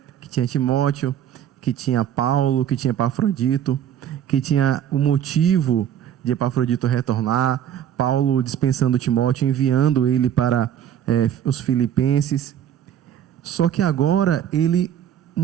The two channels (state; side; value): quieter; left; 10.0 dB